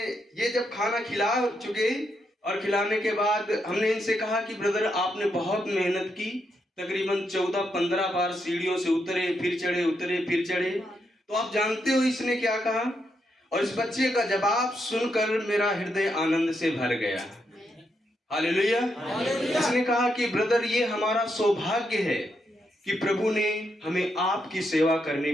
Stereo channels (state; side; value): normal; both; correlation 0.81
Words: ये जब खाना खिला चुके और खिलाने के बाद हमने इनसे कहा कि ब्रदर आपने बहुत मेहनत की, तकरीबन 14-15 बार सीढ़ियों से उतरे, फिर चढ़े, उतरे, फिर चढ़े। तो आप जानते हो इसने क्या कहा? और इस बच्चे का जवाब सुनकर मेरा हृदय आनंद से भर गया। हालेलुया। इसने कहा कि ब्रदर ये हमारा सौभाग्य है कि प्रभु ने हमें आपकी सेवा